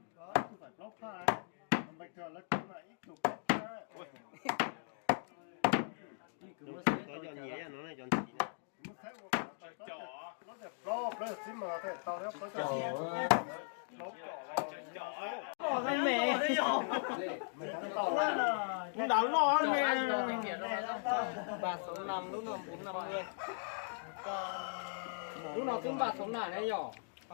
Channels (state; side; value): silent; right; digital silence